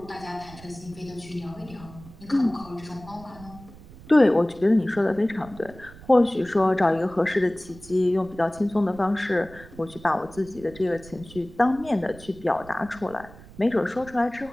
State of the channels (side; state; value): right; noise; rumble, 19 dB below the sound